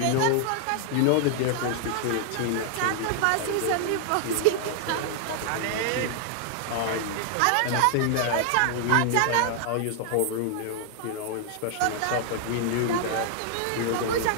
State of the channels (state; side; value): different; both; correlation 0.00